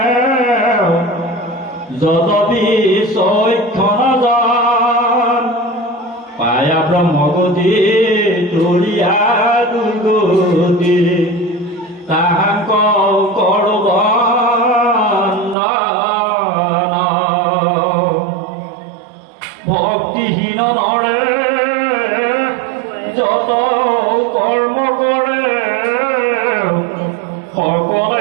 যদপি চৈক্ষণ যান পায়া ব্ৰহ্মগতি তুলিয়া দুৰ্গতি তাহাক কৰো বন্দন ভক্তিহীন নৰে যত কৰ্ম কৰে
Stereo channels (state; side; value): drops out; left; at 15.6 s